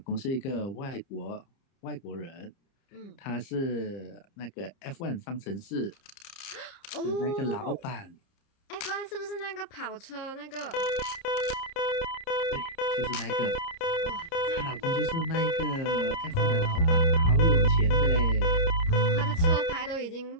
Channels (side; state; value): right; late; 30 ms